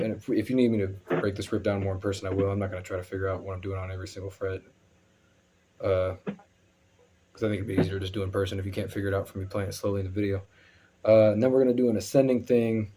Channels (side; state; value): both; identical; correlation 1.00